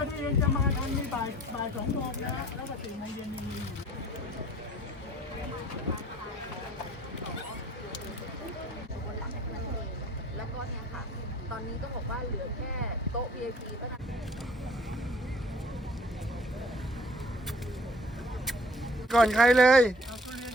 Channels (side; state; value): both; normal; correlation 0.54